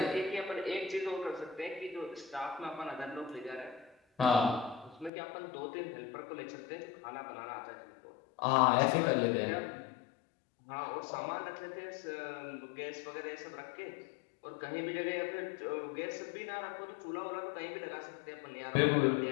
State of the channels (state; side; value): drops out; right; at 5.1 s